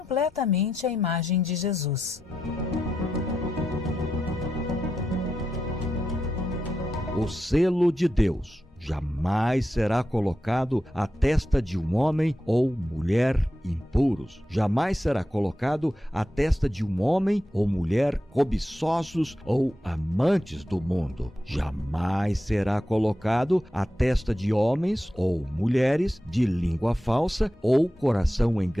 a imagem de Jesus. O selo de Deus jamais será colocado à testa de um homem ou mulher impuros. Jamais será colocado à testa de um homem ou mulher cobiçosos ou amantes do mundo. Jamais será colocado à testa de homens ou mulheres de língua falsa ou coração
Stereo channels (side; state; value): both; normal; correlation 0.88